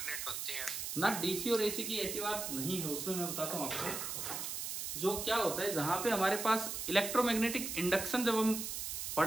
होते हैं ना। डीसी और एसी की ऐसी बात नहीं है, उसमें मैं बताता हूं आपको। जो क्या होता है, जहां पे हमारे पास इलेक्ट्रोमैग्नेटिक इंडक्शन जब हम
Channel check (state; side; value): noise; right; hiss, 4 dB below the sound